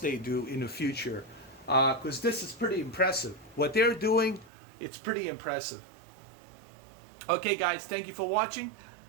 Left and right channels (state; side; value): drops out; left; at 4.5 s